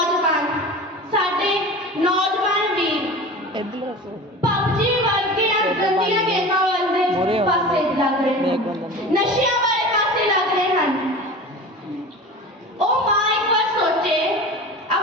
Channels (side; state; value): both; normal; correlation 0.34